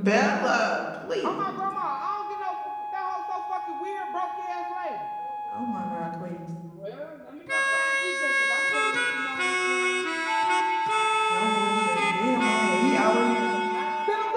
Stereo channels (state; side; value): identical; both; correlation 1.00